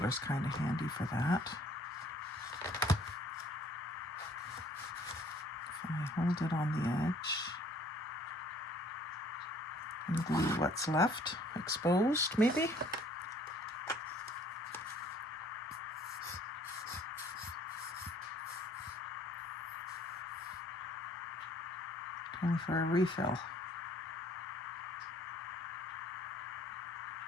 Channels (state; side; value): normal; both; correlation 0.58